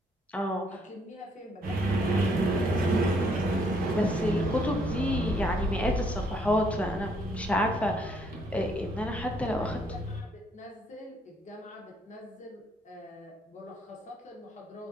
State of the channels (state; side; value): normal; both; correlation 0.69